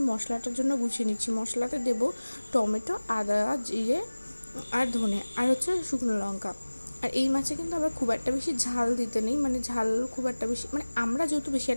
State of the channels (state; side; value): inverted; both; correlation -1.00